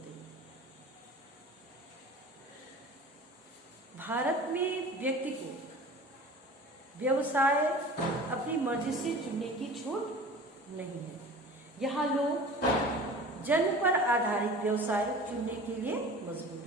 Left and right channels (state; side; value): normal; both; correlation 0.40